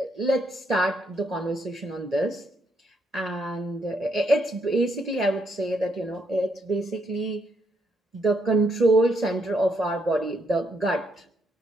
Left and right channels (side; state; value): both; normal; correlation 0.75